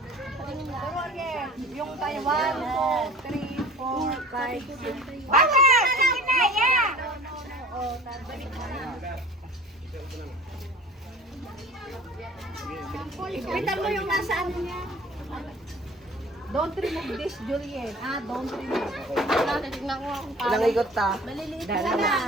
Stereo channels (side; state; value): both; normal; correlation 0.44